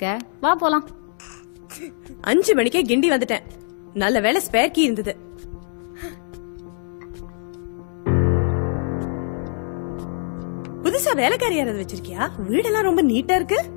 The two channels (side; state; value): right; silent; 64 dB below the other